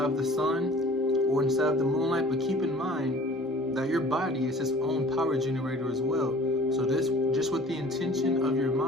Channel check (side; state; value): both; normal; correlation 0.48